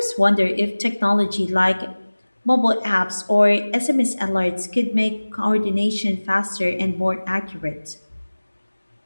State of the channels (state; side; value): inverted; both; correlation -1.00